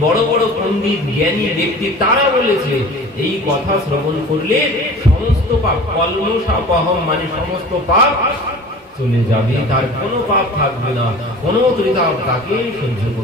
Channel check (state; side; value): normal; both; correlation 0.41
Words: বড় বড় পণ্ডিত জ্ঞানী ব্যক্তি তারা বলেছে এই কথা শ্রবণ করলে সমস্ত পাপ, কল্মষাপহম মানে সমস্ত পাপ চলে যাবে, তার কোনো পাপ থাকবে না, কোনো ত্রিতাপ তাকে সহ্য